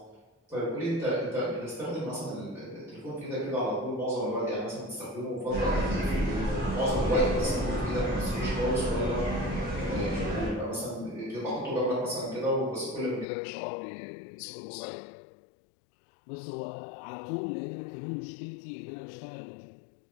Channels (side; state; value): right; drops out; at 13.2 s